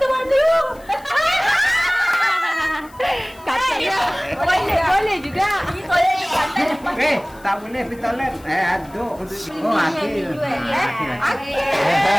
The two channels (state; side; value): noise; left; hiss, 26 dB below the sound